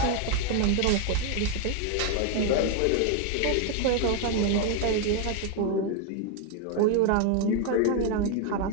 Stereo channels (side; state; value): both; different; correlation 0.01